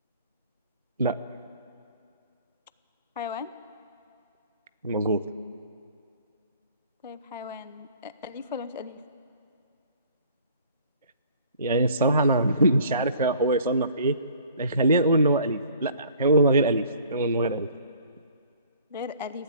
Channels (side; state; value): both; inverted; correlation -0.53